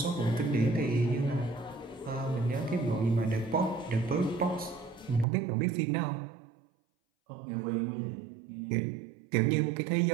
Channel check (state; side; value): drops out; left; at 5.2 s